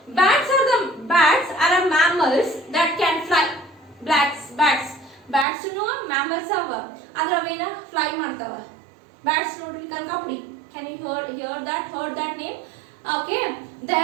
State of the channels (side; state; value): left; drops out; at 5.5 s